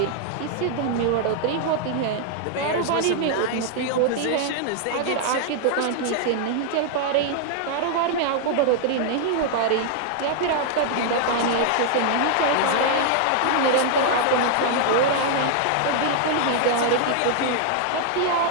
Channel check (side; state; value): both; different; correlation 0.00